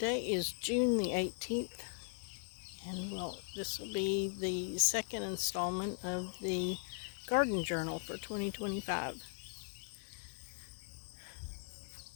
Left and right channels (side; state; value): right; silent; 52 dB below the other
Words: is June the 18th, and this will be the second installment of the garden journal for 2025.